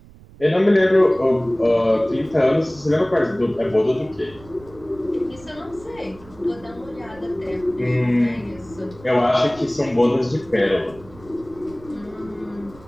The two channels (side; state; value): right; noise; rumble, 22 dB below the sound